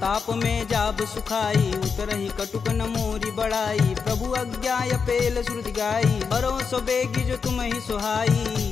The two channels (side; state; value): right; quieter; 5.7 dB